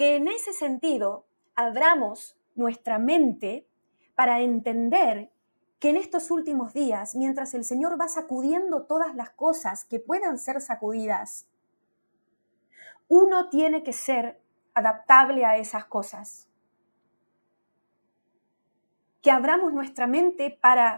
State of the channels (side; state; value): both; inverted; correlation -1.00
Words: en ese sentido abramos nuestra mente para entender que en estos últimos días, mientras el Señor va sacudiendo todas las cosas que puedan ser sacudidas, uno tiene que ser adaptable a esas cosas. Que abramos nuestra mente